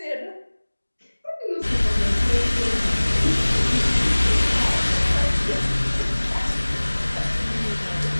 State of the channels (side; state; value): both; inverted; correlation -1.00